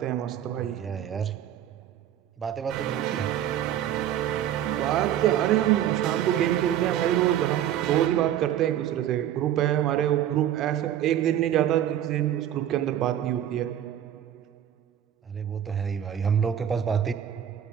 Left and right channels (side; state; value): left; quieter; 10.9 dB